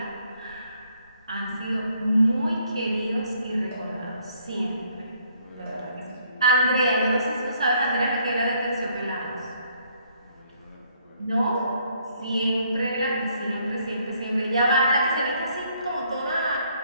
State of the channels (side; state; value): both; inverted; correlation -0.67